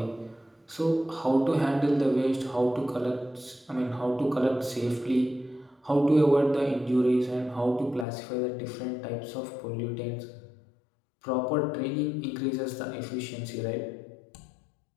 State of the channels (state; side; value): drops out; right; at 8.1 s